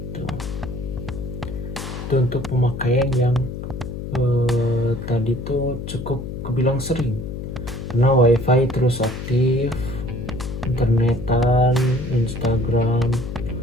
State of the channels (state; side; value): noise; left; hum, 7 dB below the sound